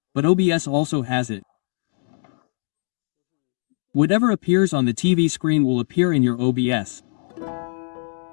but OBS also has it. Whatever appears on the TV screen will appear in your OBS.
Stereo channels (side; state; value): right; silent; 64 dB below the other